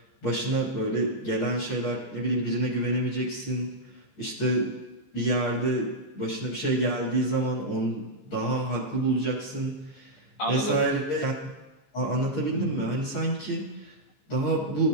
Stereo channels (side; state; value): right; late; 15 ms